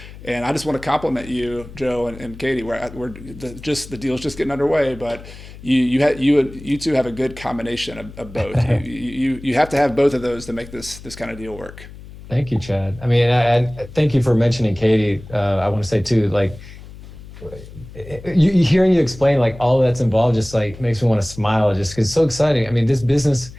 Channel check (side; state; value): left; noise; hum, 16 dB below the sound